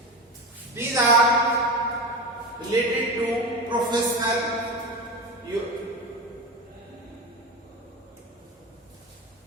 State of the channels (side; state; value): both; normal; correlation 0.23